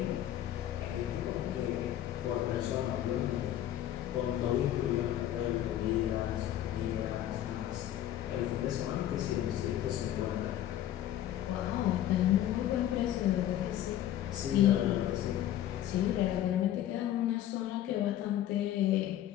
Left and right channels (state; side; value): quieter; right; 12.3 dB